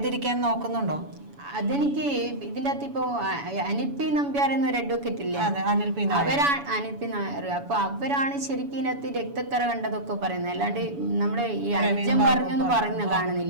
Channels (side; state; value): left; late; 7.0 ms